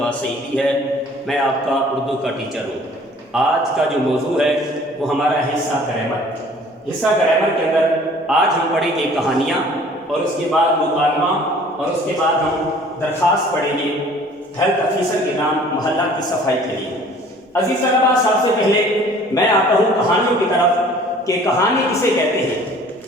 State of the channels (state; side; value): normal; both; correlation 0.52